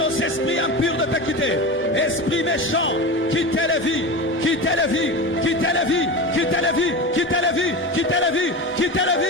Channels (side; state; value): both; normal; correlation 0.26